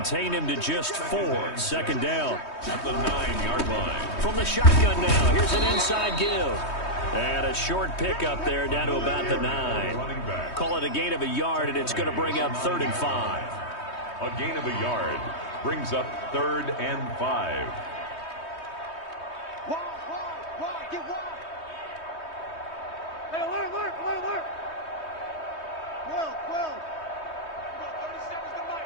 him to just 4. 2nd down. At the 9-yard line. From the shotgun now, here's an inside give. And a short pickup there down to about the 9. Call it a gain of a yard, and it's going to bring up 3rd and 5. A gain of a yard brings up 3rd and 5. Get wide. Hey, alert. 12. 37's the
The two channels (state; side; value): late; right; 3.2 ms